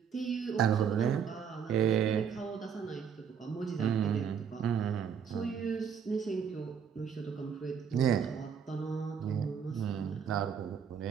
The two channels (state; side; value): quieter; left; 7.3 dB